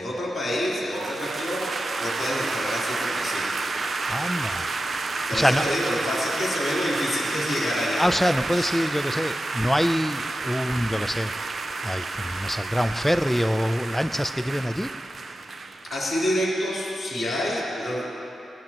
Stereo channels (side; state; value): both; normal; correlation 0.92